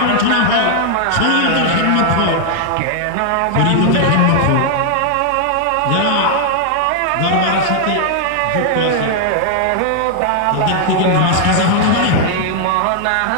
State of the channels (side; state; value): both; different; correlation 0.00